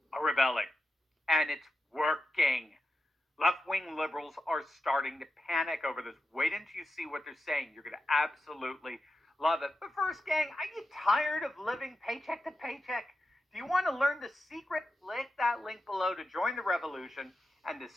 are rebelling. And it's working. Left-wing liberals are starting to panic over this. Wait until you see what they're saying. You're going to absolutely love it. But first, gang, are you tired of living paycheck to paycheck? Do you want to learn the secret? Click that link below to join the revolution and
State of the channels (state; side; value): normal; both; correlation 0.89